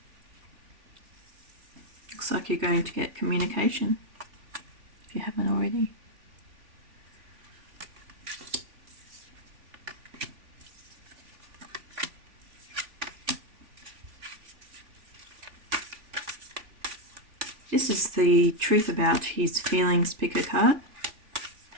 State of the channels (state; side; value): late; left; 3.5 ms